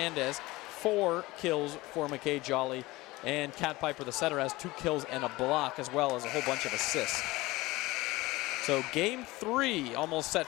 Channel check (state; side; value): quieter; right; 20.2 dB